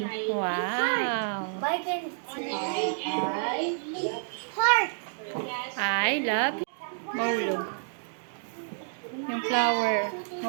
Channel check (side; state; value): left; silent; digital silence